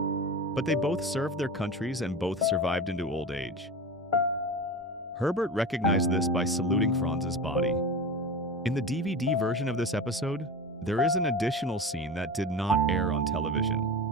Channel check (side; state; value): both; normal; correlation 0.28